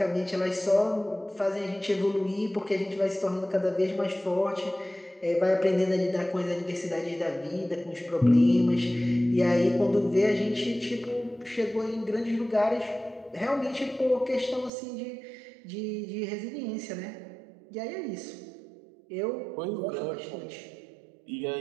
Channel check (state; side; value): drops out; left; at 14.7 s